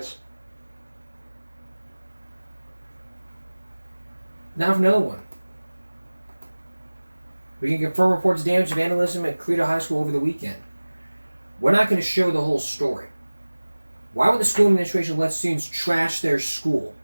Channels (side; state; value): both; inverted; correlation -1.00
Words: Now for another one. We can confirm reports of damage and vandalism at Credo High School over the weekend. We're not going to show the whole story. Why would the school administration let students trash their school?